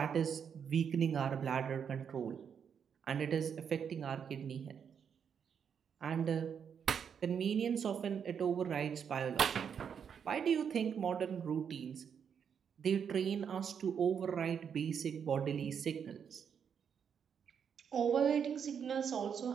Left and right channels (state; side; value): quieter; left; 7.4 dB